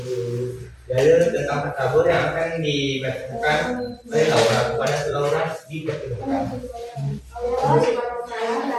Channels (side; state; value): both; identical; correlation 1.00